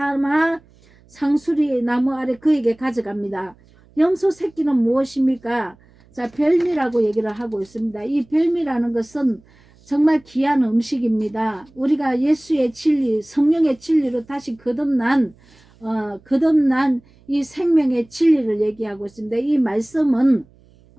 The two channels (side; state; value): right; noise; hum, 29 dB below the sound